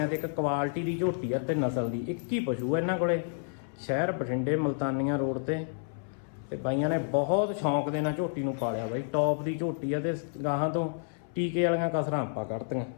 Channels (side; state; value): right; silent; 58 dB below the other